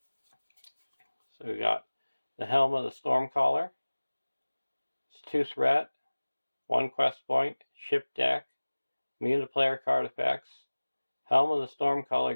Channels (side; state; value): both; inverted; correlation -1.00